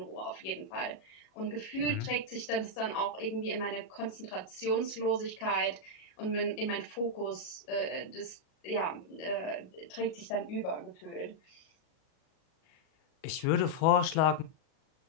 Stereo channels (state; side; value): late; right; 37 ms